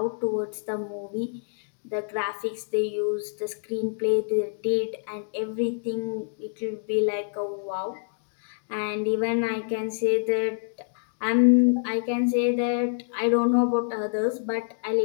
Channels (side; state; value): right; silent; digital silence